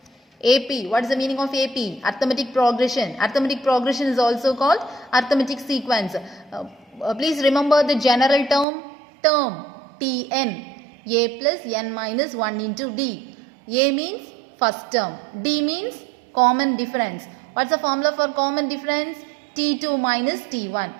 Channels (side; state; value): left; drops out; at 8.7 s